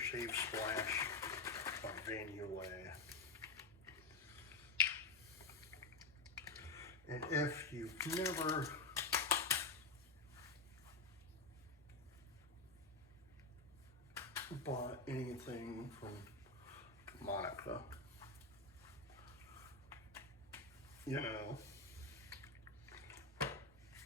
Splash by Van Yulay. And if you've never bought anything from Monica, you know,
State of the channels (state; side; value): quieter; right; 3.9 dB